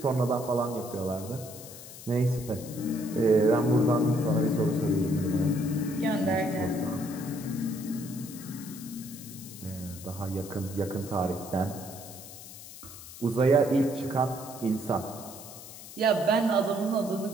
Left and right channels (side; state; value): left; noise; hiss, 14 dB below the sound